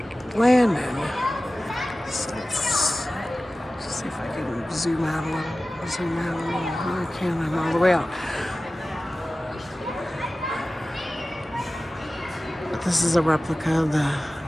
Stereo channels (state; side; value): normal; both; correlation 0.96